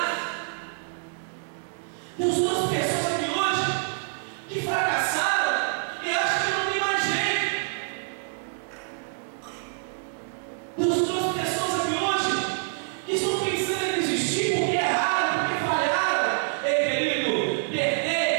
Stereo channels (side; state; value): left; silent; digital silence